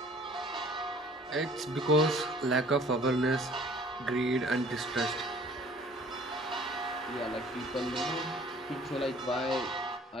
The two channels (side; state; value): both; normal; correlation 0.53